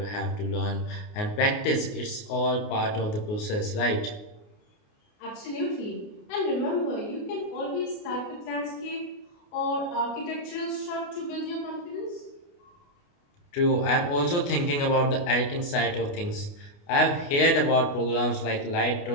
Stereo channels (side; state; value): right; late; 29 ms